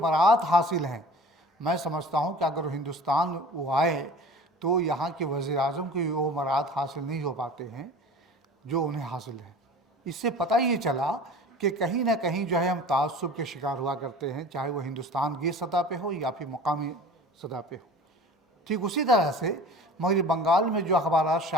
हासिल हैं, मैं समझता हूँ कि अगर हिंदुस्तान वो आए तो यहाँ के वज़ीर आज़म को वो बरात हासिल नहीं हो पाते हैं जो उन्हें हासिल है। इससे पता ये चला कि कहीं ना कहीं जो है हम तासुब के शिकार हुआ करते हैं, चाहे वो हिंदुस्तान की सतह पे हो या फिर मकामी सतह पे हो। ठीक उसी तरह से मगरबी बंगाल में जो अखबार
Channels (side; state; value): both; normal; correlation 0.41